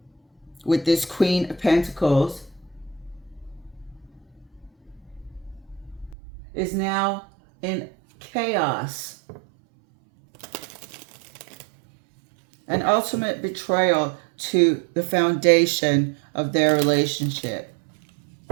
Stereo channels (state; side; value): drops out; left; at 6.2 s